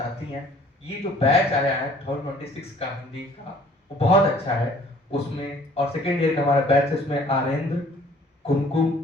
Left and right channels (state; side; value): normal; both; correlation 0.55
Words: हैं, ये जो बैच आया है 2026 का हिंदी का, वो बहुत अच्छा है। उसमें और सेकेंड ईयर का हमारा बैच है, उसमें आरेंद्र,